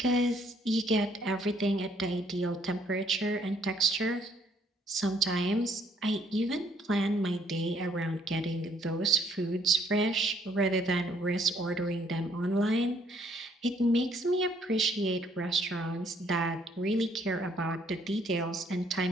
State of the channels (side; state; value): both; normal; correlation 0.65